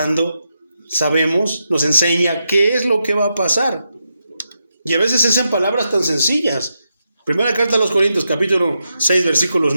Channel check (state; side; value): inverted; both; correlation -0.85